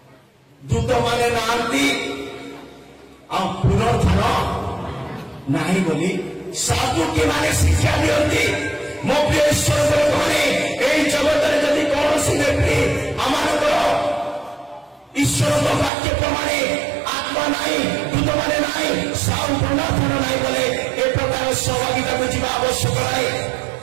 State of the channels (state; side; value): drops out; left; at 15.9 s